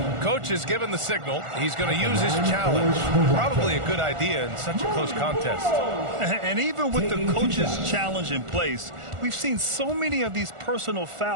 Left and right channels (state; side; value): late; left; 1.4 ms